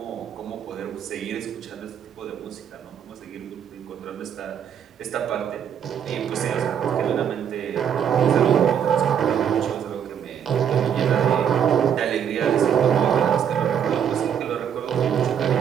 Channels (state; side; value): quieter; left; 8.5 dB